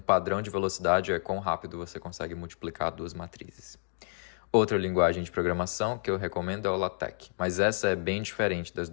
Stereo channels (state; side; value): silent; right; digital silence